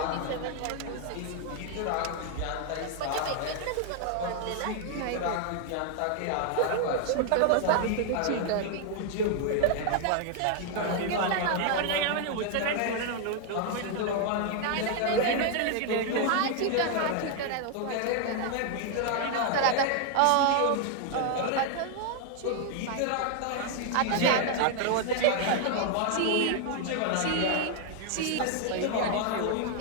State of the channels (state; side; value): different; both; correlation 0.00